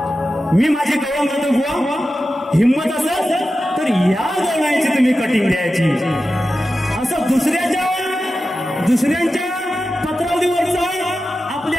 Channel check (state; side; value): normal; both; correlation 0.92